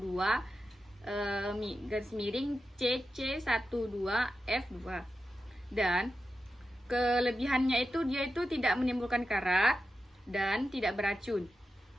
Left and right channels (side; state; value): both; normal; correlation 0.91